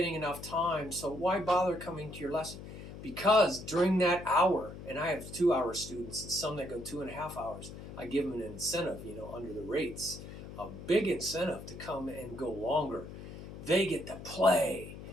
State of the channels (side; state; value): left; noise; hum, 12 dB below the sound